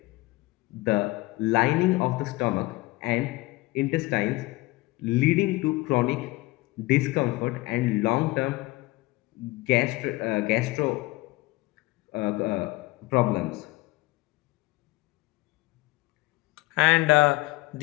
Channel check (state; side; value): quieter; right; 21.0 dB